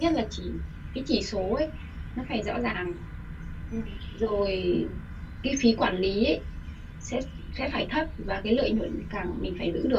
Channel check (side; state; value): both; identical; correlation 1.00